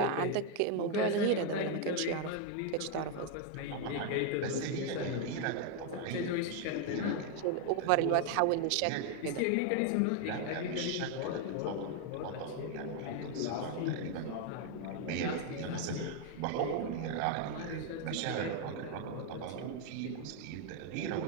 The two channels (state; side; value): different; both; correlation 0.01